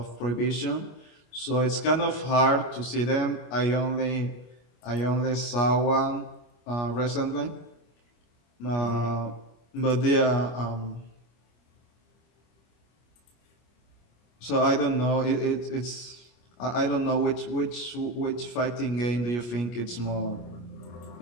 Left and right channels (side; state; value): right; late; 25 ms